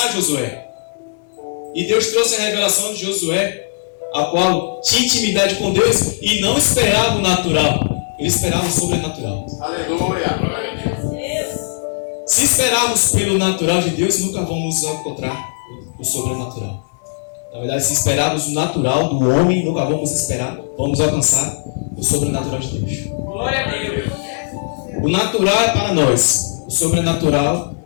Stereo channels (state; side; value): silent; right; digital silence